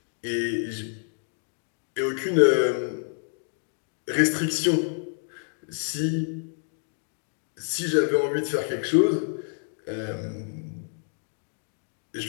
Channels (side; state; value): right; silent; 59 dB below the other